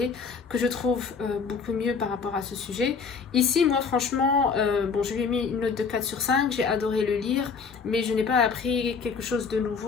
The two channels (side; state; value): right; quieter; 5.4 dB